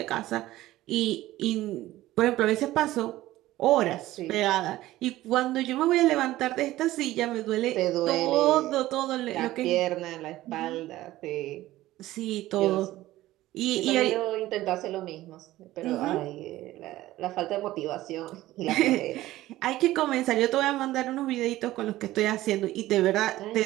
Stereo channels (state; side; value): quieter; left; 16.0 dB